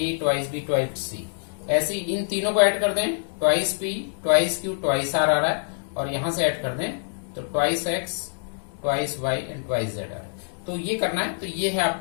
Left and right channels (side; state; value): right; silent; 58 dB below the other